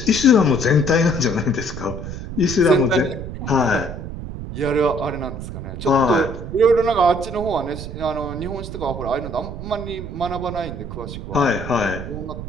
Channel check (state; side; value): noise; right; rumble, 8 dB below the sound